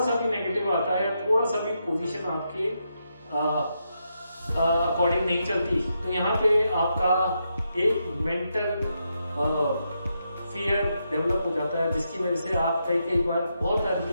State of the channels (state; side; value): inverted; both; correlation -0.82